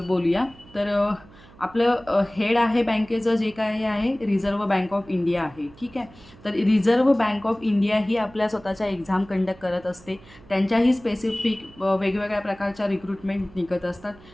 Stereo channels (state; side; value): noise; right; hum, 23 dB below the sound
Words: बोलूया. तर आपलं हेड आहे बँकेचं जे काय आहे रिझर्व्ह बँक ऑफ इंडिया आहे, ठीक आहे. तर रिझर्व्ह बँक ऑफ इंडिया ही आपल्या स्वतःच्या एक्झाम कंडक्ट करत असते. त्यांच्याही स्पेसिफिक वेगवेगळ्या प्रकारच्या रिक्रुटमेंट निघत असतात.